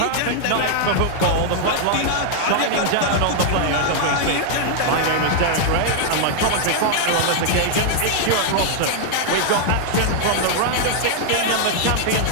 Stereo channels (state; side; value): different; both; correlation 0.00